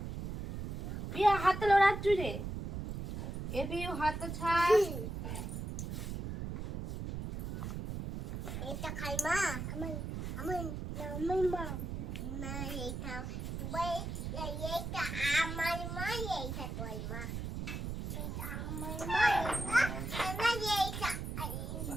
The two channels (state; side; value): noise; right; rumble, 5 dB below the sound